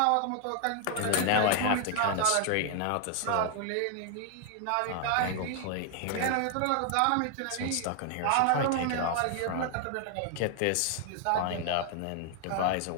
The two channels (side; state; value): both; different; correlation 0.00